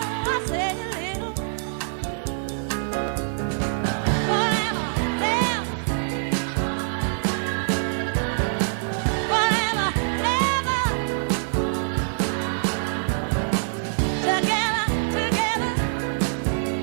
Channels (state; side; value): silent; left; digital silence